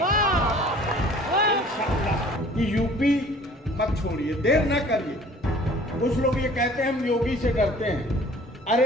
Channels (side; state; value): both; normal; correlation 0.50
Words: یو پی مت چھوڑیے, دیر نہ کریے. کچھ لوگ یہ کہتے ہیں ہم یوگی سے ڈرتے ہیں.